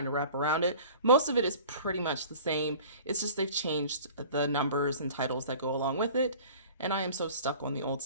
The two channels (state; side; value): inverted; both; correlation -0.44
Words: to wrap around it. Most of it is pretty much the same. It's just they've changed the numbers and titles that go along with it. And I am so stuck on the old